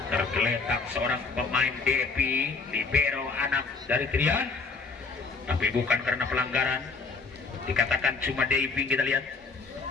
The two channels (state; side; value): quieter; right; 4.3 dB